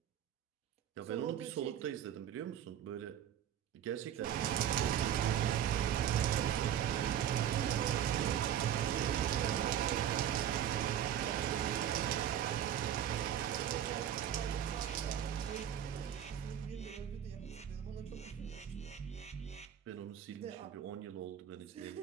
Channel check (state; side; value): quieter; left; 10.2 dB